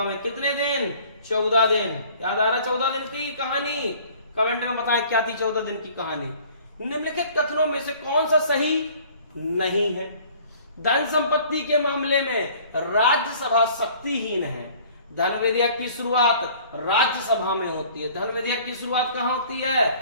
में। कितने दिन? 14 दिन। याद आ रहा? 14 दिन की कहानी? कमेंट में बताएं क्या थी 14 दिन की कहानी। निम्नलिखित कथनों में से कौन सा सही नहीं है? धन संपत्ति के मामले में राज्यसभा शक्तिहीन है। धन विधेयक की शुरुआत राज्यसभा में होती है। धन विधेयक की शुरुआत कहां होती है?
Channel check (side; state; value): both; inverted; correlation -0.51